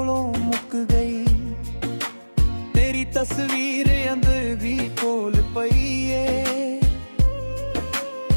ਮੁੱਕ ਗਈ। ਤੇਰੀ ਤਸਵੀਰ ਅੰਦਰ ਵੀ ਕੋਲ ਪਈ ਏ,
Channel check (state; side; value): inverted; both; correlation -1.00